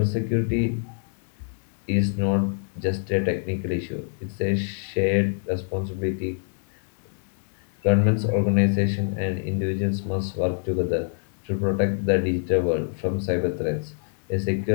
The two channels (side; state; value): right; silent; 61 dB below the other